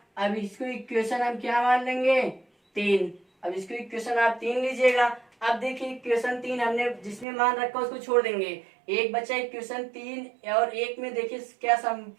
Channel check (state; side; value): drops out; left; at 7.2 s